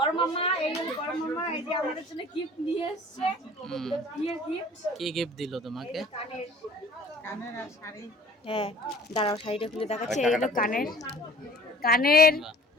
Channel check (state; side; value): normal; both; correlation 0.49